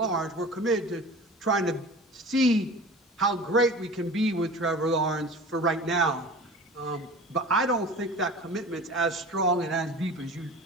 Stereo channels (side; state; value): both; normal; correlation 0.38